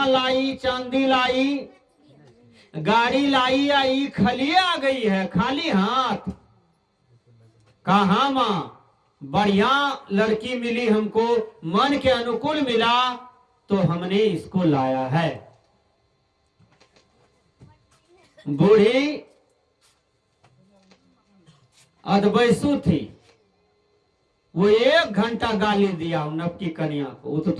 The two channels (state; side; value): identical; both; correlation 1.00